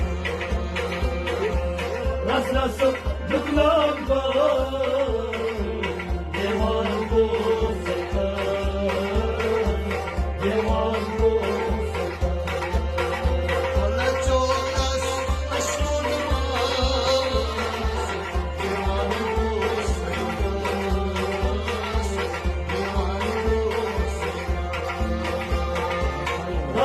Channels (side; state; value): both; identical; correlation 1.00